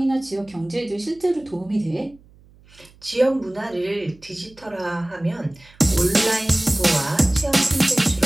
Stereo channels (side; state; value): right; noise; hum, 27 dB below the sound